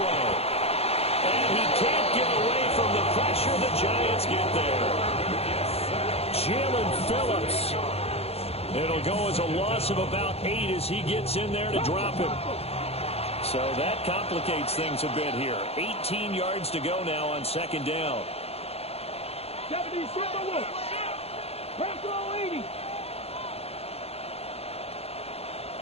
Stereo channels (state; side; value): late; right; 0.29 ms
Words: And he can't get away from the pressure. The Giants get there. Jalen Phillips. It'll go as a loss of about 8 as he gets in there to drop him. So that complicates things a bit here. 18 yards to go now on 2nd down. 70, Bravo 80.